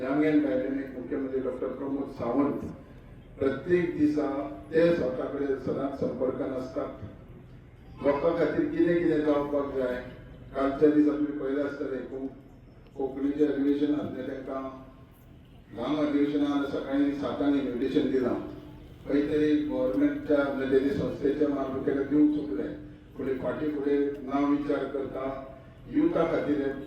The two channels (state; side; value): identical; both; correlation 1.00